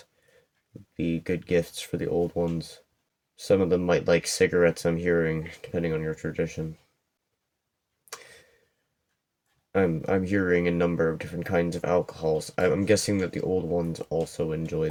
be good gifts for the old ones. Some of them might like cigarettes, I'm hearing, depending on your tradition. I'm hearing a number of different kinds of alcohols. I'm guessing that the old ones also enjoy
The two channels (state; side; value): identical; both; correlation 1.00